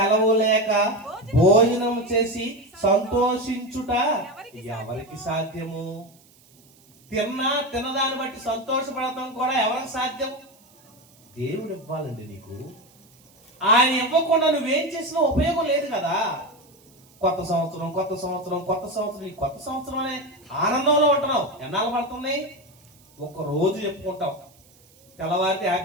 లేక భోజనం చేసి సంతోషించుట ఎవరికి సాధ్యము? తినదాన్ని బట్టి సంతోషపడటం కూడా ఎవరికి సాధ్యం? దేవుడు ఇవ్వాలండి నీకు. ఆయన ఇవ్వకుండా నువ్వేం చేసినా ఉపయోగం లేదు కదా. కొత్త సంవత్సరం ఈ కొత్త సంవత్సరం అనే ఆనందంలో ఉంటున్నావు. ఎన్నాళ్ళు పడుతున్నాయి? ఒక రోజు చెప్పుకుంటావు. తెల్లవారితే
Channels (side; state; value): right; noise; hiss, 29 dB below the sound